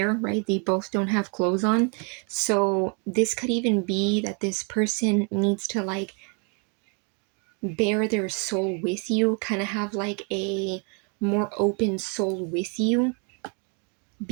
right? They both don't have clothes on. So this could even be that this person needs to like bare their soul with you, kind of have like a more open soul with you,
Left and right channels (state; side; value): quieter; left; 36.8 dB